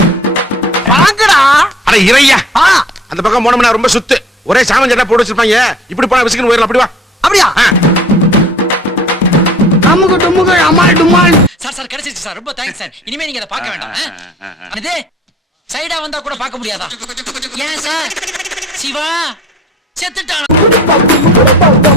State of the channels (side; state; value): both; normal; correlation 0.49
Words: வாங்கடா. அட இறையா, அந்த பக்கம் போனோம்னா ரொம்ப சுத்து, ஒரே சாமன் சட்டை போட்டு வச்சிருப்பாங்க. இப்படி போனா விசிக்கன் போயிடலாம். அப்படி வா. அப்படியா? அமுகு டுமுகு அமால் டுமால். சார் கிடைச்சிருச்சு சார், ரொம்ப தேங்க்ஸ் சார். இனிமே நீங்க அதை பார்க்க வேண்டாம். இது சைடா வந்தா கூட பார்க்க முடியாதா? ஏன் சார்? சிவா செத்துட்டான்.